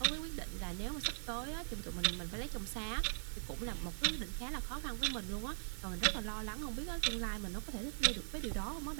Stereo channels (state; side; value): silent; left; digital silence